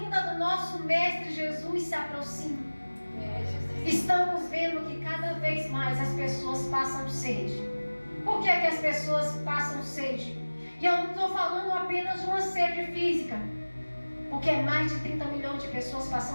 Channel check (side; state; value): both; inverted; correlation -1.00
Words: do nosso Mestre Jesus se aproxima. Estamos vendo que cada vez mais as pessoas passam sede. Por que é que as pessoas passam sede? E eu não estou falando apenas de uma sede física, porque é mais de 30 milhões de pessoas